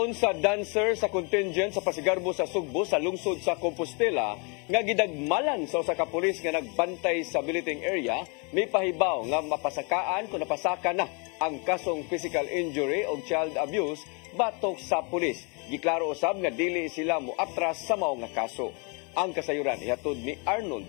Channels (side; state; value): right; quieter; 33.9 dB